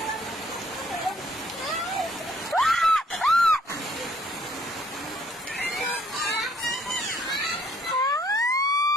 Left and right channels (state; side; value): normal; both; correlation 0.64